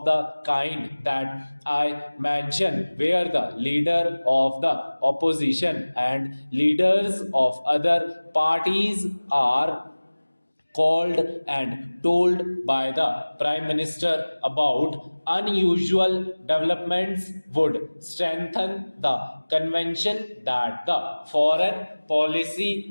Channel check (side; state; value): both; inverted; correlation -1.00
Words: the kind that I mentioned, where the leader of the opposition and leaders of other parties are called and told by the Prime Minister about unusual developments, would strengthen the convention that the foreign